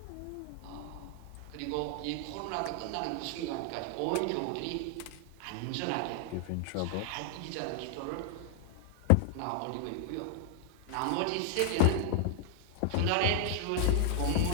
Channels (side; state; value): both; different; correlation 0.00